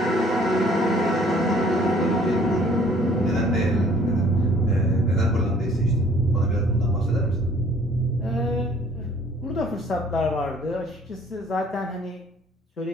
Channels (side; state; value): both; normal; correlation 0.57